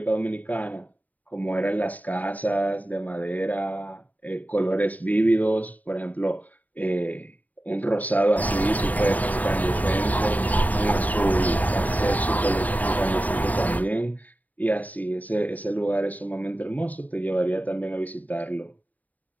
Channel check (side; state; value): right; late; 0.076 ms